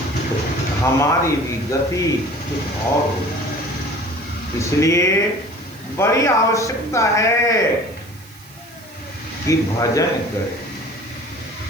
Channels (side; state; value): right; noise; hiss, 23 dB below the sound